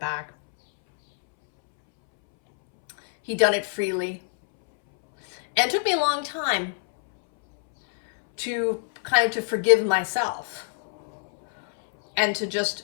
He'd done it freely. And it took me a long time to forgive myself and to just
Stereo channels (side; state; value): right; silent; 62 dB below the other